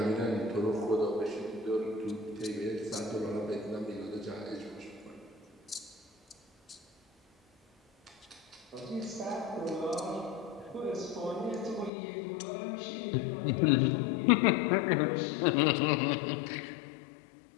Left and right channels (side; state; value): right; drops out; at 11.9 s